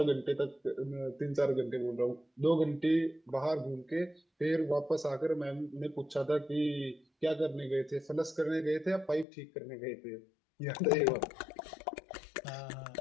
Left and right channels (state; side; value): drops out; right; at 9.2 s